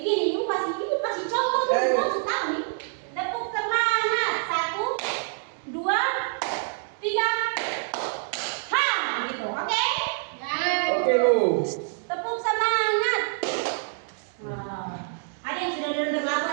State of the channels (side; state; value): left; silent; digital silence